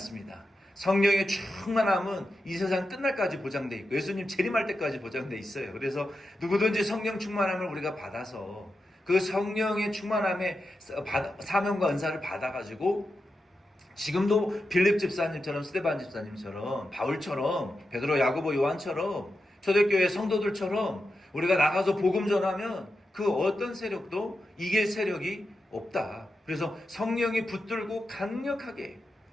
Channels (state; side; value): normal; both; correlation 0.89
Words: 성령의 충만함은 이 세상 끝날까지 보장돼 있고 예수님 재림할 때까지 보장돼 있어요. 그래서 누구든지 성령 충만함을 우리가 받아서 그 성령의 충만함의 사명과 은사를 받아가지고 지금도 빌립 집사님처럼 스데반 집사님처럼 바울처럼 베드로 야고보 요한처럼 초대교회 성도들처럼 우리가 나가서 복음 전하면 그 어떤 세력도 이길 세력이 없다. 그래서 성령이 붙들고 강력하게